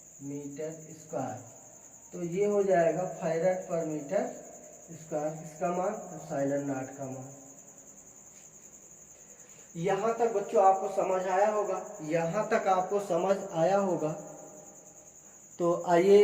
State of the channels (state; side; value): identical; both; correlation 1.00